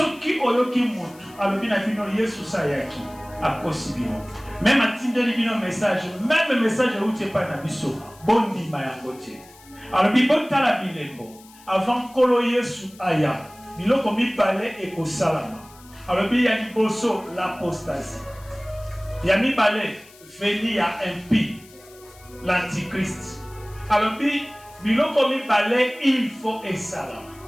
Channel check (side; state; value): left; noise; hiss, 24 dB below the sound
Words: qui ont eu qui montrent, alors bien Yesu Sayaki, à Kosibino. Même à Tinder, il y a un message. Même le message où tu n'es pas un abisso. Bon dit, Mayangote. Alors, il y a la bilembo. Avant Kolo Yesu Aya. Il y a comme il parlait et qu'au salama. Alors, il y a l'apostasie. Il y a mis balai, venir à impie, l'antichrist. Alors, il y a comme il parlait, il faut et salam.